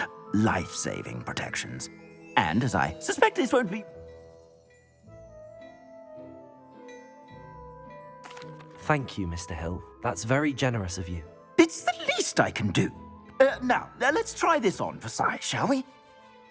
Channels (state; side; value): identical; both; correlation 1.00